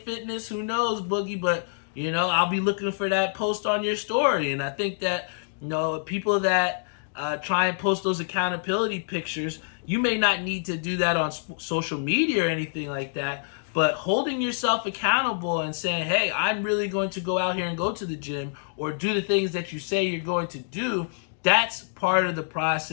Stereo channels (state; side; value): silent; right; digital silence